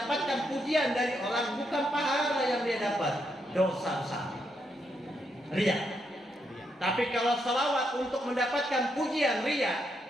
pujian dari orang, bukan pahala yang dia dapat, dosa besar, riya. Tapi kalau salawat untuk mendapatkan pujian riya,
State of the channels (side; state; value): both; normal; correlation 0.80